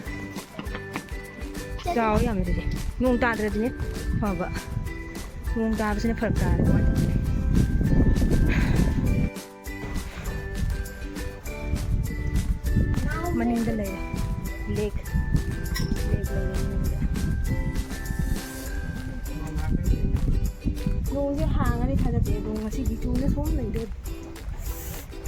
chào em rồi nung ta rồi nhé 봐봐 뭔가 무슨 벌까 Manindalay Lake ꯅꯣꯡꯁꯦ ꯍꯥꯡꯉꯅꯤ ꯊꯥꯖꯗꯦ ꯑꯗꯣ ꯉꯁꯤꯗꯤ ꯆꯨꯅ ꯁꯣꯝ ꯂꯩꯗꯣꯏ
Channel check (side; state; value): both; identical; correlation 1.00